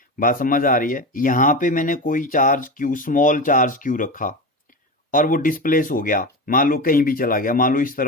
बात समझ आ रही है। यहां पे मैंने कोई charge Q, small charge Q रखा और वो डिस्प्लेस हो गया, मान लो कहीं भी चला गया, मान लो इस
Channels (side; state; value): both; normal; correlation 0.22